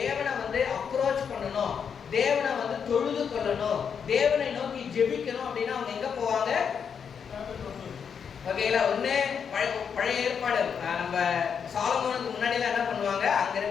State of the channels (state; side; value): quieter; right; 7.0 dB